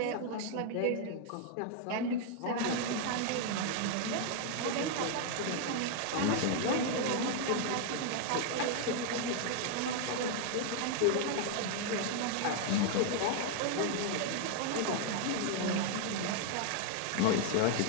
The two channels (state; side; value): different; both; correlation 0.00